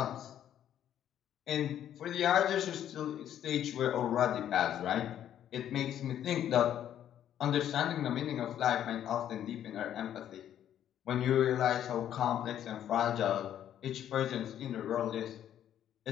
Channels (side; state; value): right; quieter; 10.6 dB